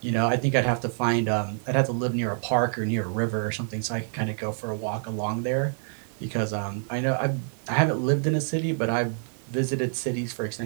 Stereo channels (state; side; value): silent; left; digital silence